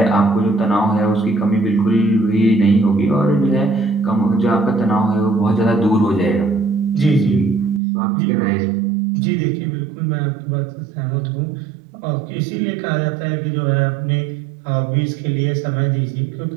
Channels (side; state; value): left; drops out; at 7.8 s